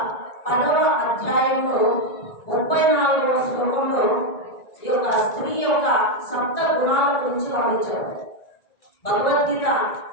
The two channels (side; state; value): right; late; 1.9 ms